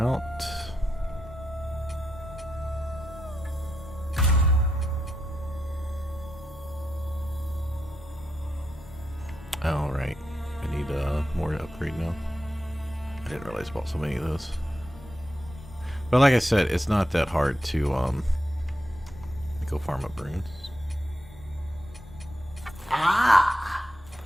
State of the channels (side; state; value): both; normal; correlation 0.85